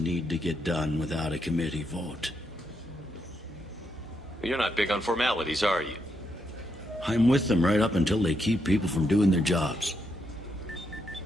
to get done without a committee vote. You're not big on formalities, are you? I'm with them right up until they keep people from doing their jobs.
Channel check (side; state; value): both; normal; correlation 0.80